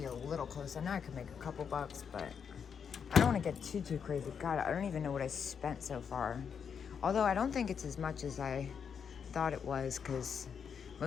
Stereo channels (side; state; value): right; quieter; 7.0 dB